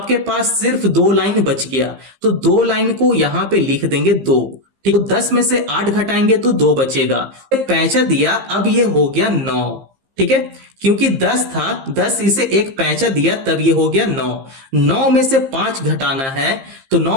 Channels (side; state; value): left; late; 15 ms